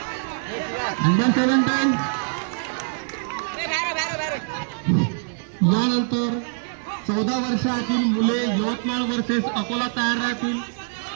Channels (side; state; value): left; silent; 63 dB below the other